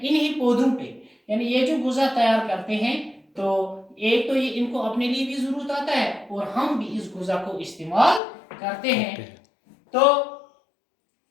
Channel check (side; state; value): right; drops out; at 8.2 s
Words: पौधों पे। यानी ये जो गुज़ा तैयार करते हैं, तो एक तो ये इनको अपने लिए भी जरूरत आता है और हम भी इस गुज़ा को इस्तेमाल करते हैं। तो